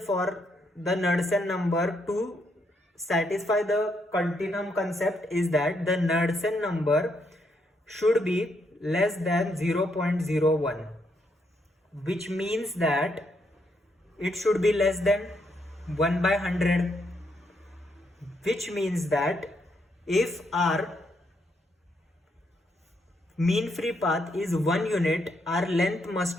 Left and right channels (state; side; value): normal; both; correlation 0.76